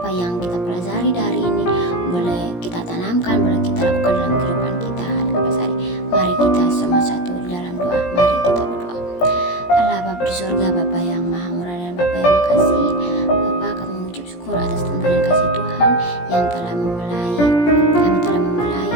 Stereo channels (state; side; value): late; right; 17 ms